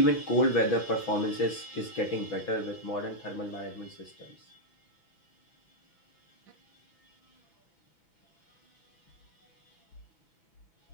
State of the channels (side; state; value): right; late; 6.1 ms